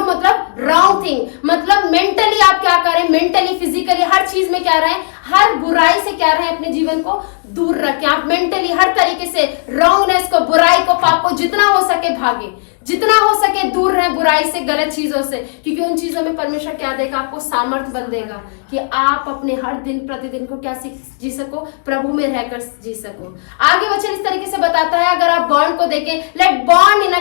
मतलब रॉन्ग थिंग, मतलब मेंटली आप क्या करें, मेंटली फिजिकली हर चीज में क्या रहें, हर बुराई से क्या रहें, अपने जीवन को दूर रखें। आप मेंटली हर तरीके से रॉन्गनेस को, बुराई को, पाप को जितना हो सके भागे, जितना हो सके दूर रहे बुराई से, गलत चीजों से, क्योंकि उन चीजों में परमेश्वर क्या देगा, आपको सामर्थ्य बल देगा कि आप अपने हर दिन प्रतिदिन को क्या जी सको, प्रभु में रहकर जी सको। आगे वचन इस तरीके से बताता है, अगर आप बॉन्ड को देखें, let bond in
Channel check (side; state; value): right; silent; 70 dB below the other